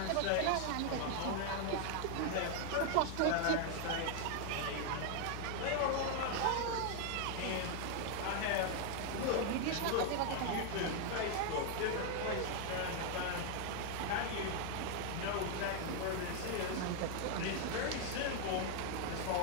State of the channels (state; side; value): different; both; correlation 0.01